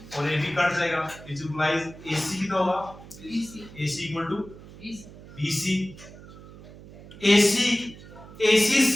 और AB कट जाएगा, which implies AC कितना होगा, AC equal to BC। AC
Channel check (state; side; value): noise; right; hum, 18 dB below the sound